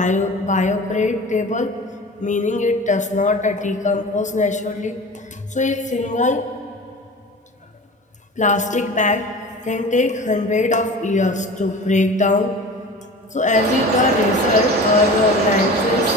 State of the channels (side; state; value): both; normal; correlation 0.36